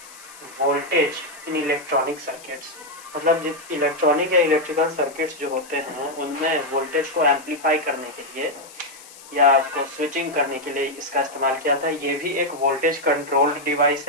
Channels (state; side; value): noise; left; hiss, 19 dB below the sound